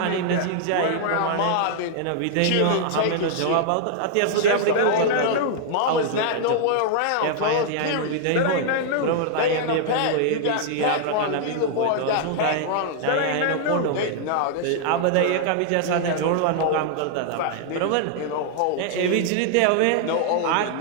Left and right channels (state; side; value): different; both; correlation -0.01